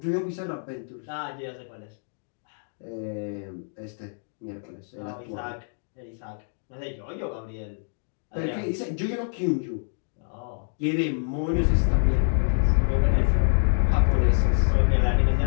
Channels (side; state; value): right; silent; digital silence